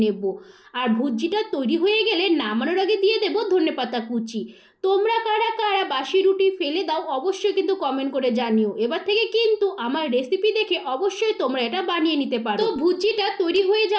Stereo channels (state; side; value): identical; both; correlation 1.00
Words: নেব। আর ভুজিটা তৈরি হয়ে গেলে নামানোর আগে দিয়ে দেব ধনেপাতা কুচি। তোমরা কারা কারা বাসি রুটি ফেলে দাও অবশ্যই কিন্তু কমেন্ট করে জানিও। এবার থেকে কিন্তু আমার রেসিপি দেখে অবশ্যই তোমরা এটা বানিয়ে নিতে পারো। তো ভুজিটা তৈরি হয়ে